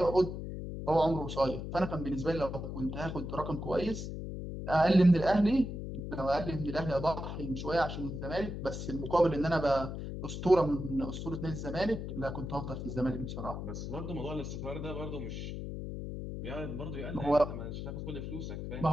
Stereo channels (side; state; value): left; noise; hum, 6 dB below the sound